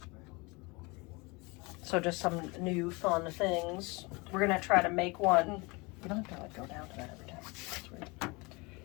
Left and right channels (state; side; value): quieter; right; 26.6 dB